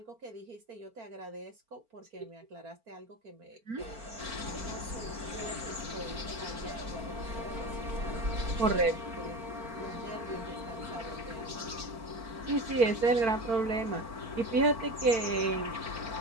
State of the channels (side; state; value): left; late; 4.4 ms